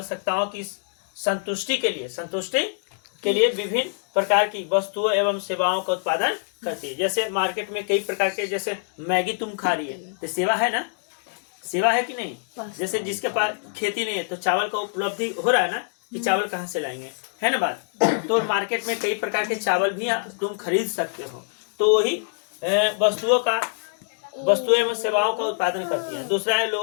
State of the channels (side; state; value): right; silent; digital silence